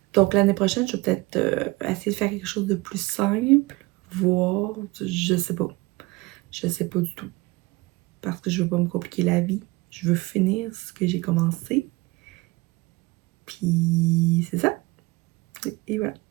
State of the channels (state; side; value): quieter; left; 22.9 dB